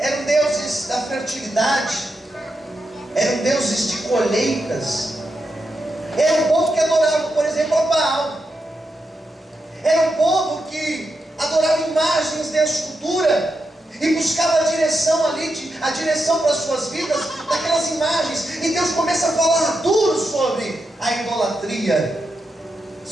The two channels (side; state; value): both; normal; correlation 0.86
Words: deuses da fertilidade, eram deuses de colheitas, era um povo que adorava, por exemplo, a Baal, era um povo que adorava imagens de escultura e buscava a direção ali, a direção para as suas vidas daquelas imagens. E Deus começa a falar duro sobre a idolatria,